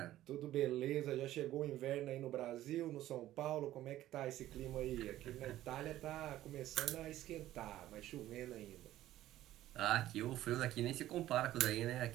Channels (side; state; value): left; quieter; 14.1 dB